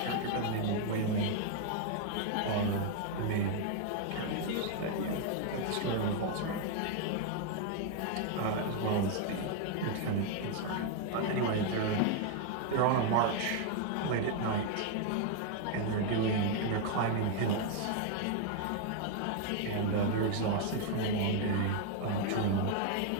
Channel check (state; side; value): different; both; correlation 0.00